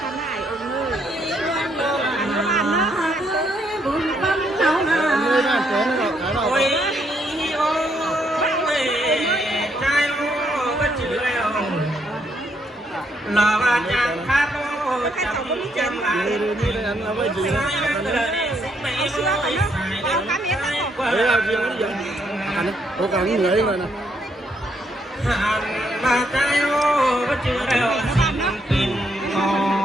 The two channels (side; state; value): both; normal; correlation 0.74